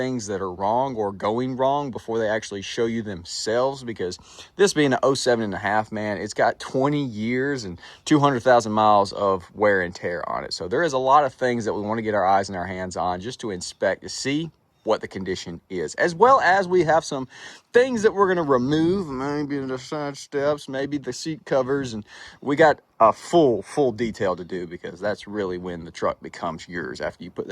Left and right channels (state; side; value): identical; both; correlation 1.00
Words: that are wrong or going wrong before they actually show you themselves, because this being an 07.5, man, it's got 20 years and 200,000 miles of wear and tear on it. So there is a lot of things that we want to get our eyes and our hands on just to inspect to see what the condition is, as well as we have some things that we're going to remove, maybe the side steps, maybe the seat covers, and we got a full detail to do, because that's really when the truck becomes yours, after you put